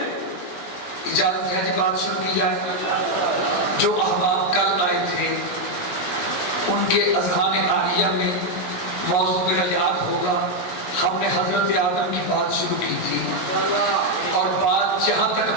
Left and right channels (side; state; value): right; late; 17 ms